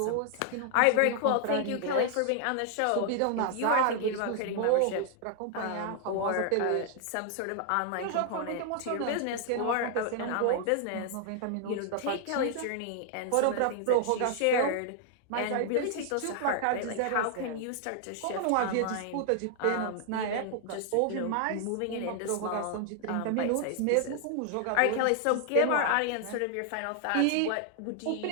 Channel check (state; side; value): different; both; correlation 0.00